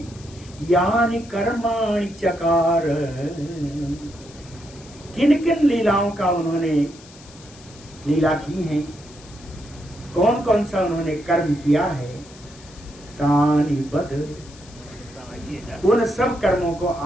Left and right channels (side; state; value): left; noise; hiss, 22 dB below the sound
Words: यानि कर्माणि चकार, किन किन लीलाओं का उन्होंने लीला की है, कौन कौन सा उन्होंने कर्म किया है, तानि बद, उन सब कर्मों को